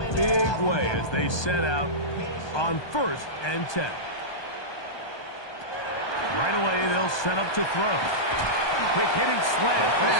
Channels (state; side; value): late; right; 1.2 ms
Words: big way as they set out on 1st and 10. Right away, they'll set up to throw. Quick hitting slant